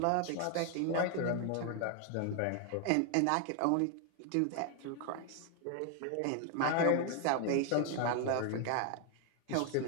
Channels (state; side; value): different; both; correlation 0.01